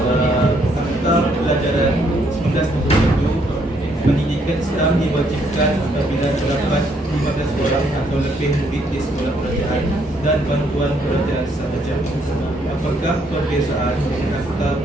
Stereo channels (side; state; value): both; normal; correlation 0.70